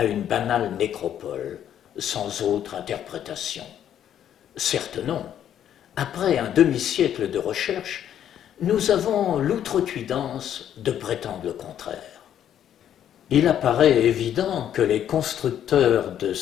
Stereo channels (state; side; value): quieter; right; 10.2 dB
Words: une banale nécropole, sans autre interprétation. Certes non. Après un demi-siècle de recherche, nous avons l'outrecuidance de prétendre le contraire. Il apparaît évident que les constructeurs de